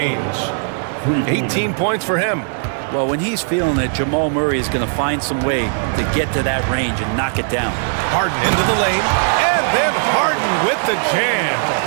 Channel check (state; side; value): silent; left; digital silence